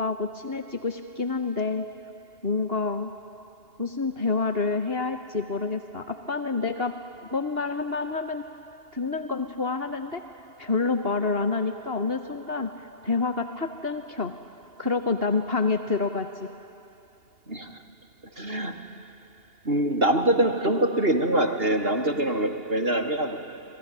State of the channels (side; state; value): left; late; 2.8 ms